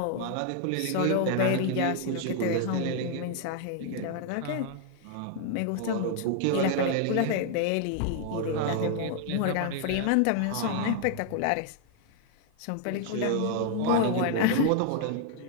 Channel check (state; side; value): different; both; correlation 0.00